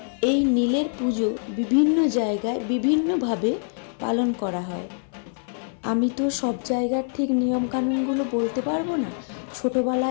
এই নীলের পুজো বিভিন্ন জায়গায় বিভিন্নভাবে পালন করা হয়। আমি তো সব জায়গার ঠিক নিয়মকানুনগুলো বলতে পারবো না।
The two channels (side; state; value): right; silent; 56 dB below the other